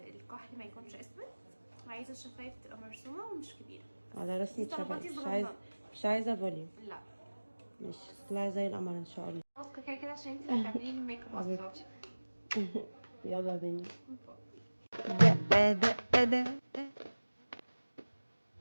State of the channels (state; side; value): inverted; both; correlation -1.00